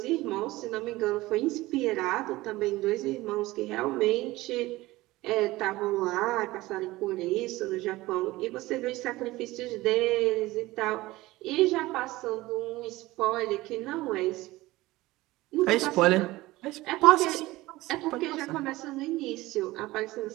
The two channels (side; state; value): left; quieter; 18.8 dB